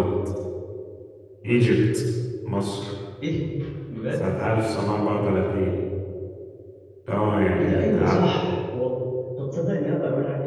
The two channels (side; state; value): both; identical; correlation 1.00